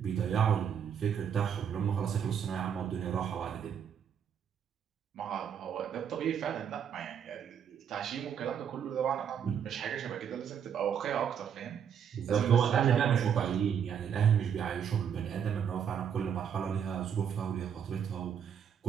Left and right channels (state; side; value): quieter; left; 8.1 dB